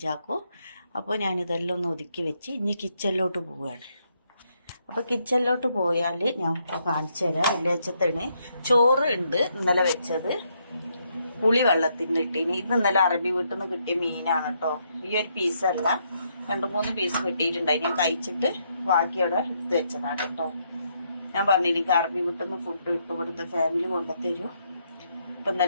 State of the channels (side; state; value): both; inverted; correlation -0.76